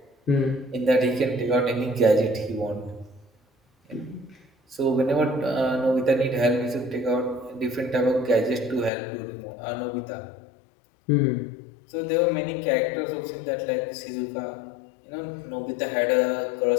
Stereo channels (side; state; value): right; drops out; at 8.9 s